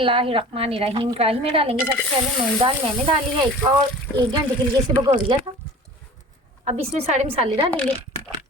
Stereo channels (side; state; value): both; normal; correlation 0.42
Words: कढ़ाई में डालेंगे सबसे पहले मूंग दाल। मैंने डाली है एक घंटे के लिए इसे भिगो दिया था। अब इसमें सारे मसाले डालेंगे।